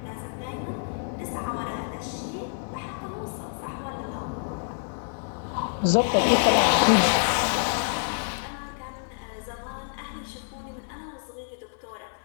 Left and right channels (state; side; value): silent; right; 59 dB below the other